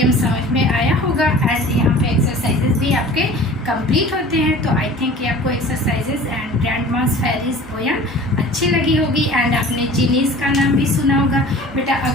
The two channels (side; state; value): both; normal; correlation 0.43